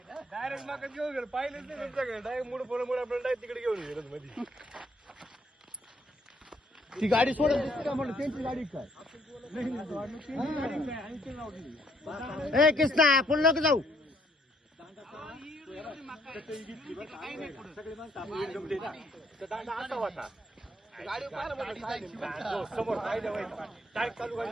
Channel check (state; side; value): normal; both; correlation 0.68